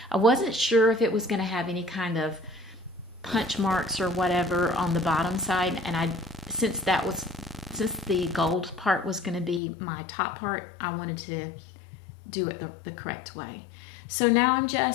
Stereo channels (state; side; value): drops out; right; at 9.6 s